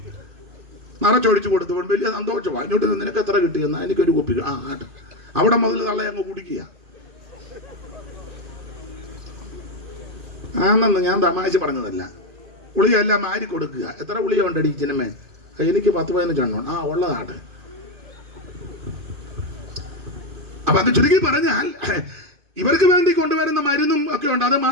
നിറച്ചൊഴിച്ചു കൊടുത്തു. വലിയ സന്തോഷമാണ്. ഇങ്ങോട്ട് നിനക്ക് എത്ര കിട്ടിയെന്നാ, എനിക്കൊരു കുപ്പി. അവിടെ മുതൽ തള്ളയെ അങ്ങ് കുടിക്കുക. ആണെന്ന് ഞാൻ തമാശ പറഞ്ഞതല്ല. ഗുളിക എല്ലാം മാരി കൊടുക്കുക. എത്ര ഗുളിക ഉണ്ടടി ചിന്നമ്മേ? എനിക്ക് 10-15 എണ്ണം. ഉള്ളതാട്ടെ. അപ്പൊ അത് ചുരുക്കി പറഞ്ഞാൽ ഇവർക്ക് വേണ്ടി കൊണ്ടുവരുന്ന മരുന്നും ഒക്കെ ഉണ്ട്. അത്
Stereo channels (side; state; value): left; late; 2.5 ms